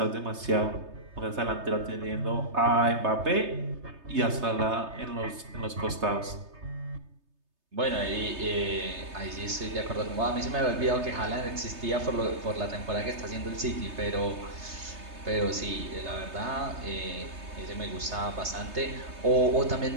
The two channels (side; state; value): left; late; 3.3 ms